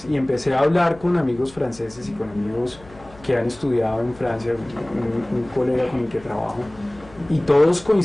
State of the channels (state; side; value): noise; left; hum, 22 dB below the sound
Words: y empecé a hablar con amigos franceses y con amigos que han estudiado en Francia, un colega con el que trabajo, y todos